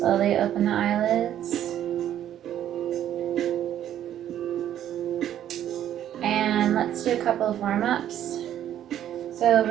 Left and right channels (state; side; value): quieter; left; 11.0 dB